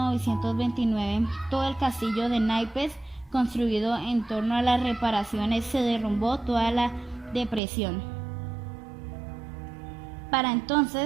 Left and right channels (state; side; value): drops out; left; at 7.6 s